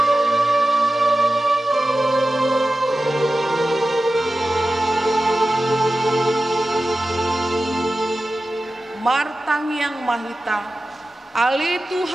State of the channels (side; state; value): both; normal; correlation 0.94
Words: Martang yang mahita Ali